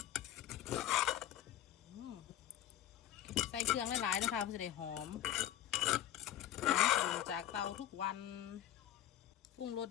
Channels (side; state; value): right; quieter; 11.9 dB